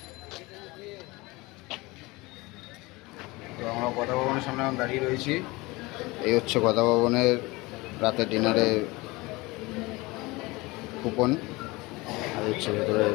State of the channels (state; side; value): quieter; right; 22.8 dB